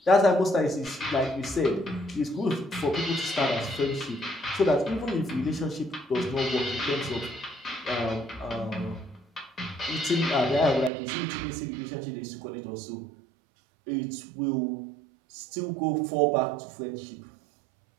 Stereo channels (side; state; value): left; drops out; at 10.9 s